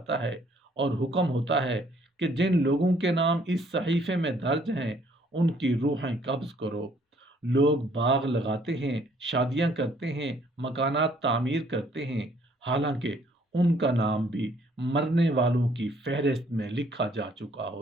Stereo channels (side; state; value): both; normal; correlation 0.63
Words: ہے اور حکم ہوتا ہے کہ جن لوگوں کے نام اس صحیفے میں درج ہیں ان کی روحیں قبض کرو۔ لوگ باغ لگاتے ہیں، شادیاں کرتے ہیں، مکانات تعمیر کرتے ہیں، حالانکہ ان کا نام بھی مرنے والوں کی فہرست میں لکھا جا چکا